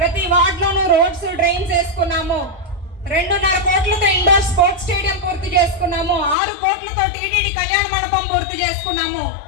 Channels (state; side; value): drops out; right; at 6.4 s